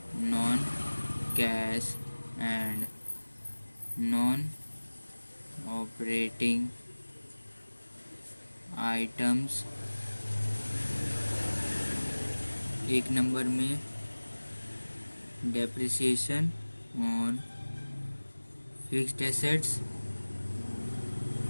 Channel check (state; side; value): inverted; both; correlation -1.00